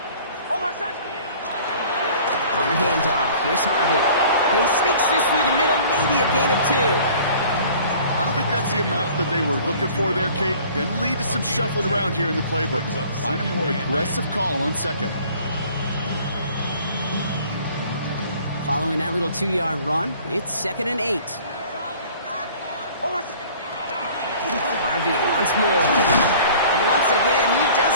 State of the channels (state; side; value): inverted; both; correlation -0.49